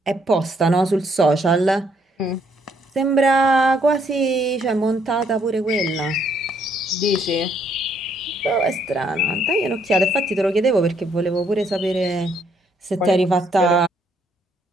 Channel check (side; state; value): both; normal; correlation 0.70